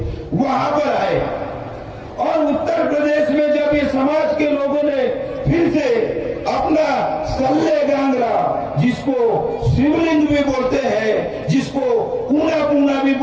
वहां पर आए, और उत्तर प्रदेश में जब ये समाज के लोगों ने फिर से अपना सल्ले गांगरा, जिसको शिवलिंग भी बोलते हैं, जिसको पूना पूना भी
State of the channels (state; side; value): identical; both; correlation 1.00